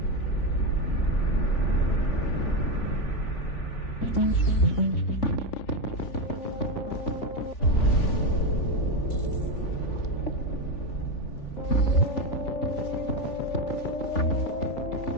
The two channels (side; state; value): right; late; 3.4 ms